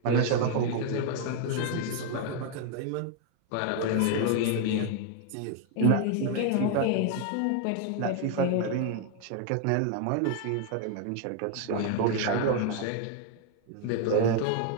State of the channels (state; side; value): different; both; correlation 0.00